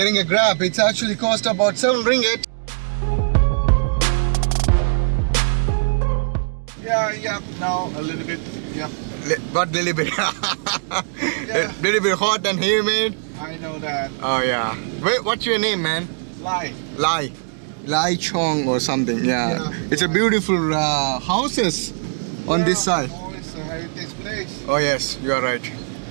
a grab, it's actually cost about 7 ringgit. Yeah, now a little bit, yeah. But little bit, Yeah. little bit hot and humid. I know that. Oh yeah. Wait, what's your name, man? Lie. Lai Chong or something. Yeah. Yeah. It's a beautiful houses on this side. Oh, it's a heritage place. Oh yes, you are right.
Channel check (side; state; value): left; silent; digital silence